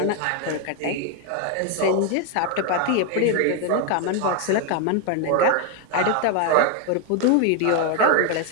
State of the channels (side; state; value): both; different; correlation 0.01